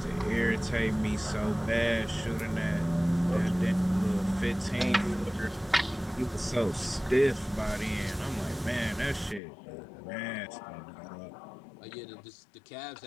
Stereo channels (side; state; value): right; drops out; at 9.4 s